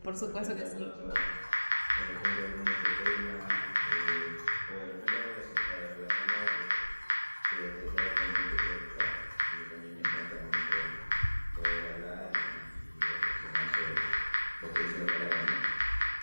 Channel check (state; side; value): inverted; both; correlation -1.00